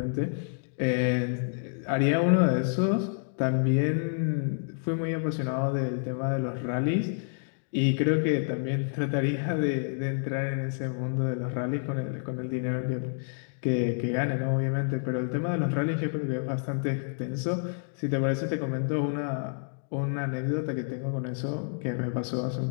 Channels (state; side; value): silent; right; digital silence